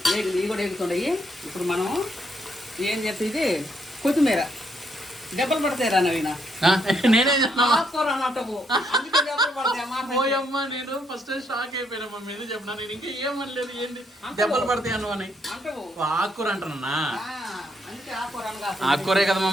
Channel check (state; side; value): normal; both; correlation 0.74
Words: ఇవి కూడా ఎగుతున్నాయి. ఇప్పుడు మనం ఏం చెప్తే ఇది కొత్తిమీర దెబ్బలు పడతాయి రా నవీన. నేనే ఆకుకూర అన్నట్టు అందుకే దెబ్బలు పడతాయి అమ్మా. నేను ఫస్ట్ షాక్ అయిపోయినా మమ్మీ, ఏదో చెప్పినా. నేను ఇంకా ఏమనలేదు, ఏంటి దెబ్బలు పడతాయి అను అని. ఆకుకూర అంటున్నా. అందుకే ఆకుకూర అనగా ఆకుకూరే కదా